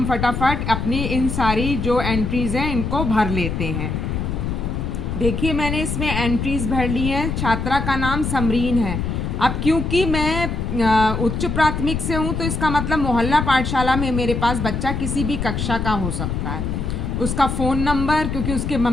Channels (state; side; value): noise; left; rumble, 2 dB below the sound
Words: फटाफट अपनी इन सारी जो एंट्रीज़ हैं इनको भर लेते हैं। देखिए, मैंने इसमें एंट्रीज भर ली हैं। छात्रा का नाम समरीन है। अब क्योंकि मैं उच्च प्राथमिक से हूँ तो इसका मतलब मोहल्ला पाठशाला में मेरे पास बच्चा किसी भी कक्षा का हो सकता है। उसका फ़ोन नंबर, क्योंकि उसके